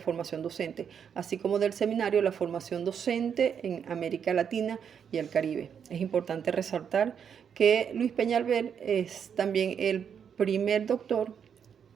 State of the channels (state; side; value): quieter; left; 7.6 dB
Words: Docente, así como del Seminario de la Formación Docente en América Latina y el Caribe. Es importante resaltar que Luis Peñalver es también el primer doctor